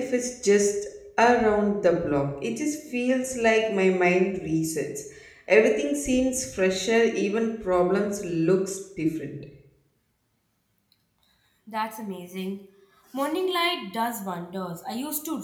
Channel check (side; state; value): both; identical; correlation 1.00